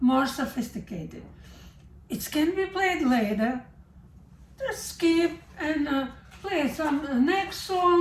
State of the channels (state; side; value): identical; both; correlation 1.00